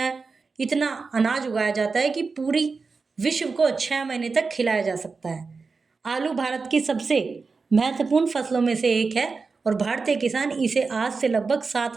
इतना अनाज उगाया जाता है कि पूरी विश्व को 6 महीने तक खिलाया जा सकता है। आलू भारत की सबसे महत्वपूर्ण फसलों में से एक है और भारतीय किसान इसे आज से लगभग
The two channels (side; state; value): left; quieter; 4.5 dB